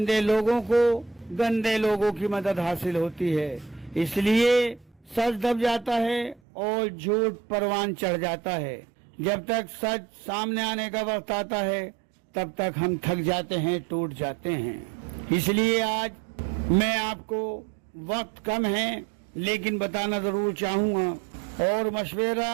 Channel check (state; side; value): drops out; left; at 6.4 s